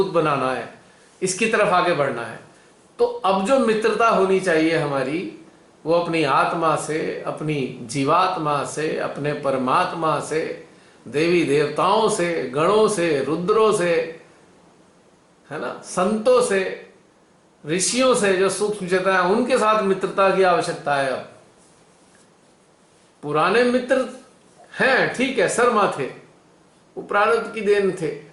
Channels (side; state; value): both; identical; correlation 1.00